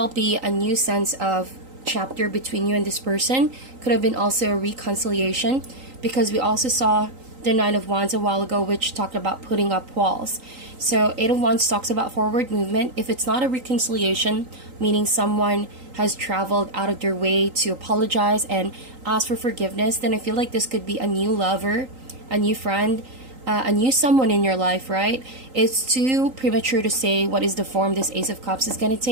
be a new sense of chapter between you and this person. Could have been also a reconciliation, because we also saw the Nine of Wands a while ago, which talked about putting up walls. So 8 of Wands talks about forward movement. If it's not a reconciliation, meaning someone has traveled out of their way to apologize and ask for forgiveness, then I feel like this could be a new lover, a new friend, a new someone in your life, right? It's too premature to say what is the form this Ace of Cups is going to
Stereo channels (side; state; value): left; late; 3.8 ms